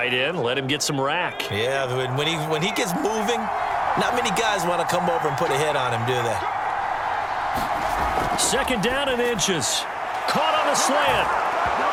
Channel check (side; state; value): both; identical; correlation 1.00